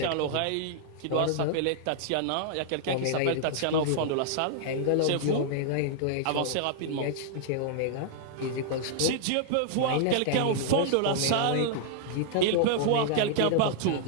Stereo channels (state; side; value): different; both; correlation -0.01